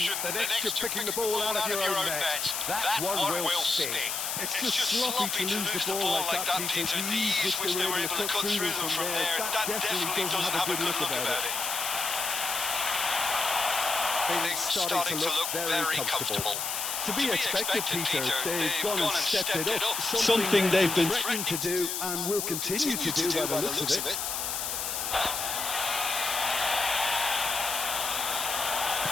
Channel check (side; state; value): left; noise; hiss, 2 dB below the sound